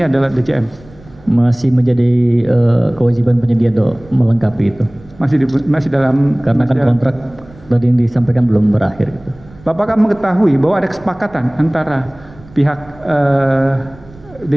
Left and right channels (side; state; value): right; noise; rumble, 23 dB below the sound